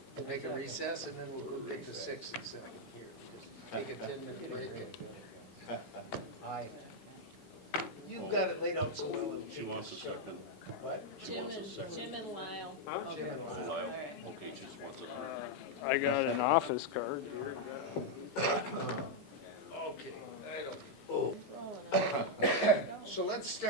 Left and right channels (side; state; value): both; normal; correlation 0.00